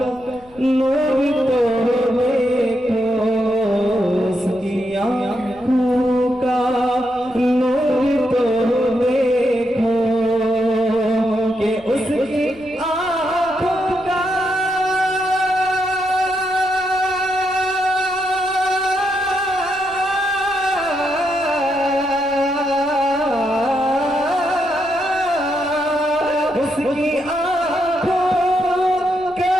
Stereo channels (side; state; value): left; noise; rumble, 26 dB below the sound